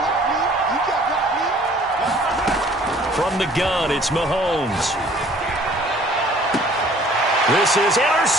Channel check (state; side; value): normal; both; correlation 0.54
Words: From the gun, it's Mahomes. This is